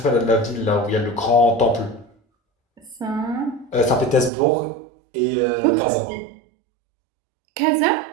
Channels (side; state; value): left; drops out; at 4.3 s